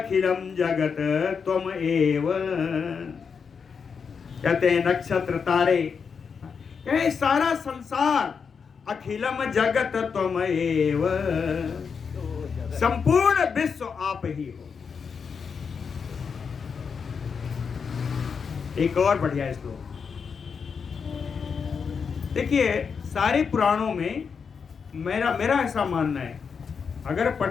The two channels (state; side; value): quieter; right; 6.0 dB